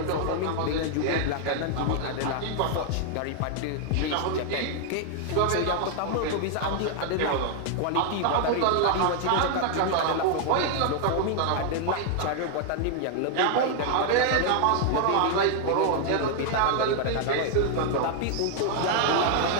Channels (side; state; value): both; different; correlation 0.00